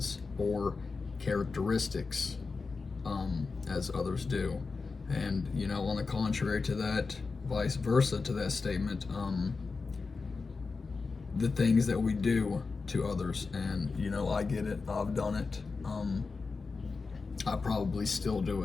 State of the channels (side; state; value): right; quieter; 4.4 dB